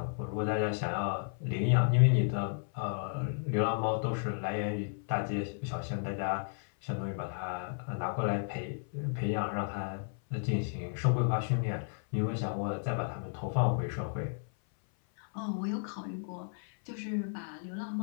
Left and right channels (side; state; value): right; silent; 56 dB below the other